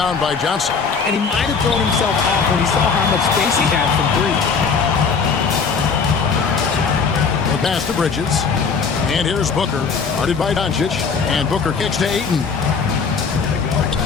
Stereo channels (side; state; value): right; quieter; 5.4 dB